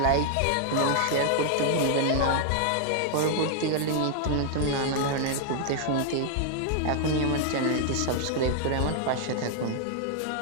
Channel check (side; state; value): both; different; correlation 0.00